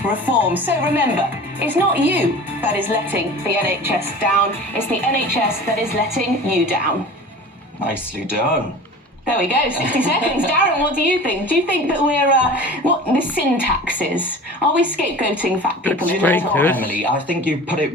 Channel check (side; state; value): both; normal; correlation 0.39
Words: reform. So remember, it's not you that is letting the NHS down, it's the NHS that is letting you down. Nicely done. There we go, 60 seconds. Darren, what do you think? Do you think that we're, what the syntax is? Are we scapegoating fat people in the top? Emily, I think you put it